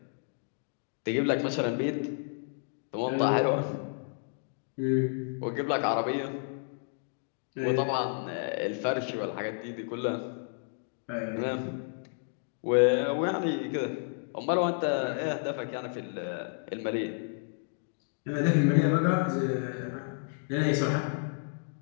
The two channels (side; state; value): right; silent; digital silence